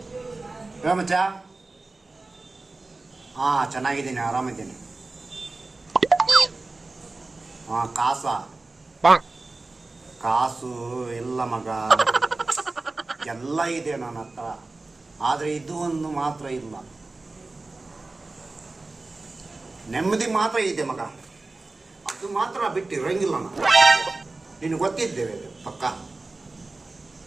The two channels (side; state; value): left; quieter; 3.3 dB